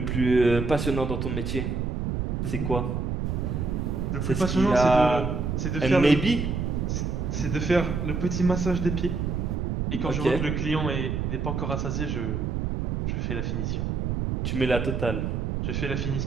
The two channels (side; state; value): right; noise; rumble, 1 dB below the sound